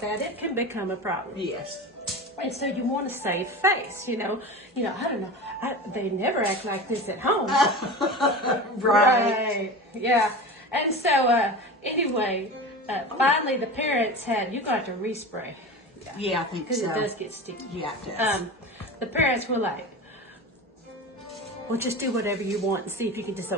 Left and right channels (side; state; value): both; normal; correlation 0.30